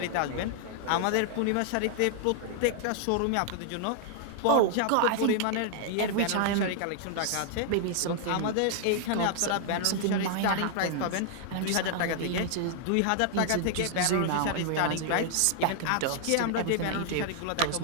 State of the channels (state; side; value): different; both; correlation 0.00